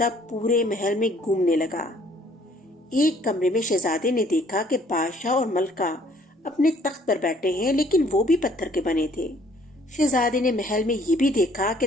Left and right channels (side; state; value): both; normal; correlation 0.60